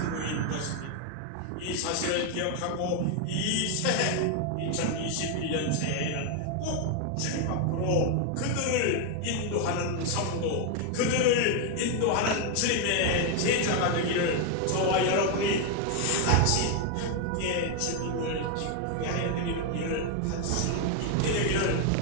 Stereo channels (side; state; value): both; different; correlation 0.01